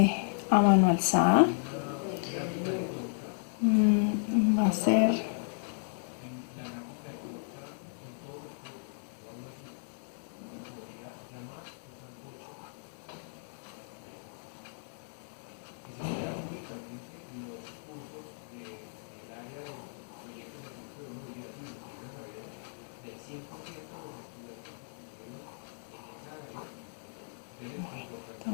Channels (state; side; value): silent; right; digital silence